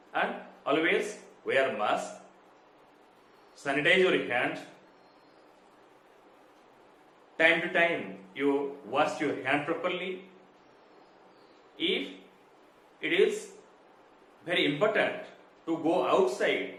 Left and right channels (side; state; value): both; identical; correlation 1.00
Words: and always wear mask. Sanitize your hands. Time to time, you wash your hand properly. If it is very important to go outside,